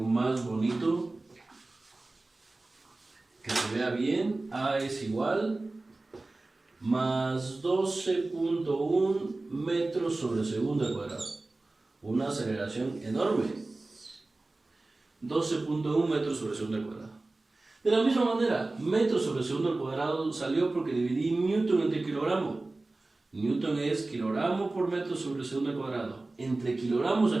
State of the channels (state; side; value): quieter; left; 3.1 dB